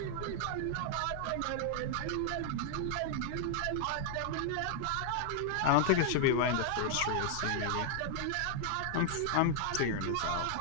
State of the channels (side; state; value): both; different; correlation 0.00